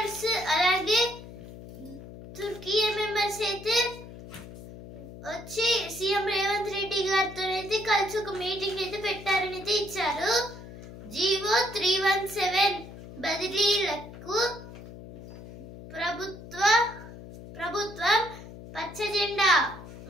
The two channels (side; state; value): left; noise; hum, 15 dB below the sound